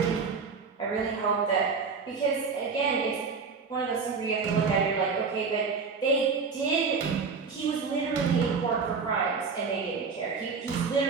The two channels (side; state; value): left; quieter; 5.1 dB